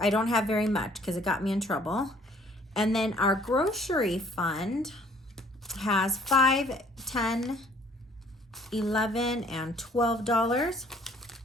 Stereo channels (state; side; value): normal; both; correlation 0.58